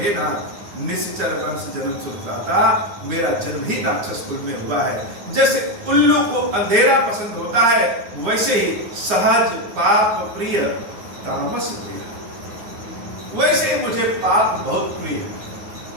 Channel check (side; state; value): left; late; 9.7 ms